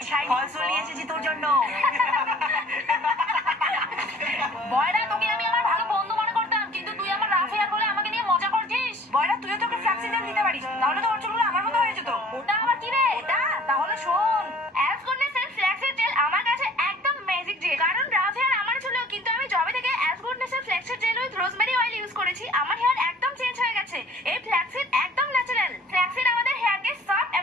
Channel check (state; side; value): normal; both; correlation 0.51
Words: শাইন ফলস নিয়ে এসেছি তোর জন্য। বয়রা, তোকে আমি আমার ভালো বন্ধু মনে করতাম, কিন্তু তুই আমার রাফ হেয়ার বলে আমাকে নিয়ে মজা করছিস। বয়রা, তুইও তোকে ফ্ল্যাক্সি জেল দিতে পারিস, তাহলে তো ওর চুলগুলো আমার মতো হয়ে যেত। ওটা আবার কি রে? ওটা তাহলে শোন, অ্যাজ গুডনেস এর ফ্ল্যাক্সের জেল আমার কাছে একদম ম্যাজিক জেল। কারণ রাফ হেয়ার আমার ছিল, কিন্তু আমি জবে থেকে অ্যাজ গুডনেস এর ফ্ল্যাক্সের gel with rosemary oil use করেছি, আমার হেয়ার একদম চেঞ্জ হয়ে গেছে। এই ফ্ল্যাক্সিড একদম ন্যাচারাল। ফ্ল্যাক্সিড আমাদের হেয়ারকে সফট